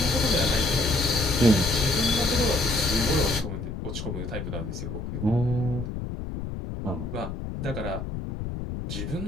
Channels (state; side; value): noise; left; rumble, 6 dB below the sound